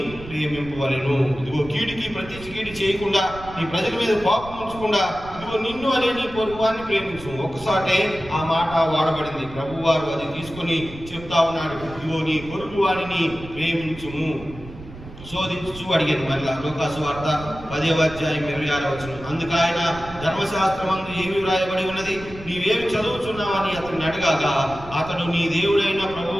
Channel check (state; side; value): noise; right; rumble, 16 dB below the sound